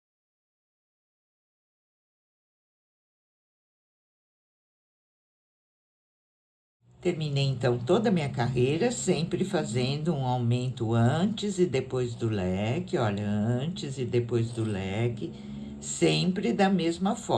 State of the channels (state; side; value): identical; both; correlation 1.00